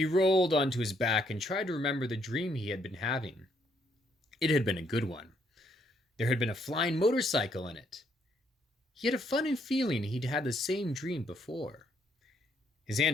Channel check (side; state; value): both; normal; correlation 0.71